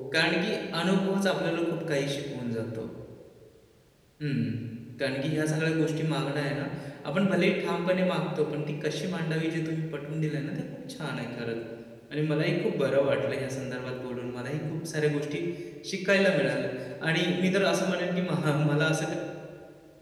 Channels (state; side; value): identical; both; correlation 1.00